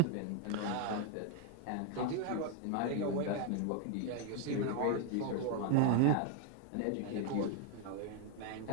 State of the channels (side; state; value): both; different; correlation 0.00